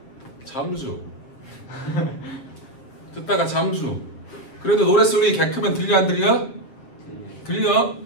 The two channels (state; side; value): late; right; 7.4 ms